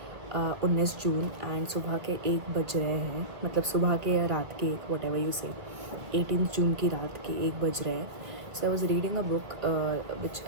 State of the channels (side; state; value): left; late; 1.7 ms